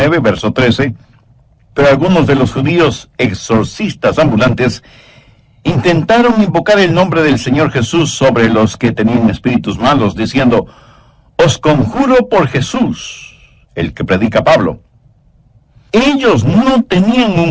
verso 13. Pero algunos de los judíos exorcistas ambulantes intentaron invocar el nombre del Señor Jesús sobre los que tenían espíritus malos, diciendo: os conjuro por Jesús, el que predica Pablo. Ellos no tenían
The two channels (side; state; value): both; identical; correlation 1.00